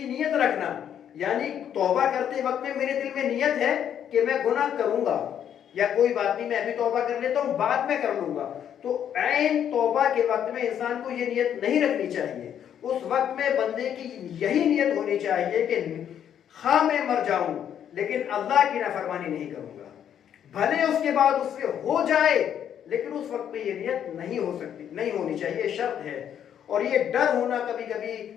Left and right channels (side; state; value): right; quieter; 9.4 dB